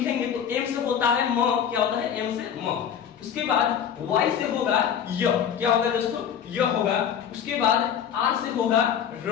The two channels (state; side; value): quieter; right; 8.5 dB